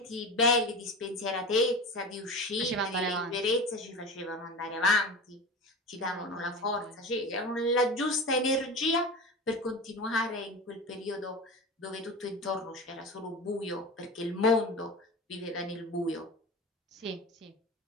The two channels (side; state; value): both; normal; correlation 0.30